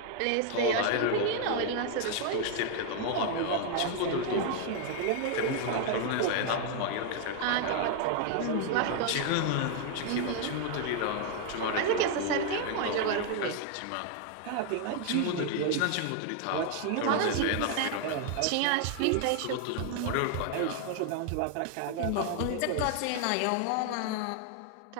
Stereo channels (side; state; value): both; different; correlation 0.00